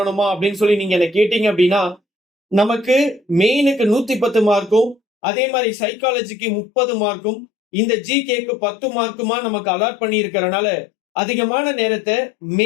அப்படின்னு சொல்லி நீங்க என்ன கேட்டீங்க அப்படின்னா, நமக்கு மெயினுக்கு 110 மார்க்கும், அதே மாதிரி சைக்காலஜிக்கு 30 மார்க்கும், இந்த ஜிகேக்கு 10 மார்க்குமா நமக்கு அலாட் பண்ணி இருக்கிறனால அதிகமான நேரத்தை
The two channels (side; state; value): right; drops out; at 5.0 s